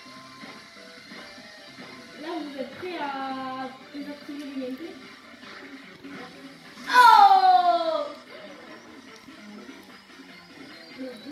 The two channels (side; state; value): both; identical; correlation 1.00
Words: Là, vous êtes prêts à désactiver le gameplay? Oh!